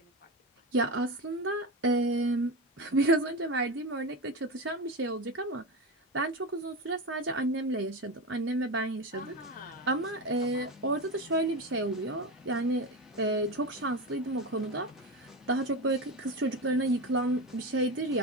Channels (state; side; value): normal; both; correlation 0.20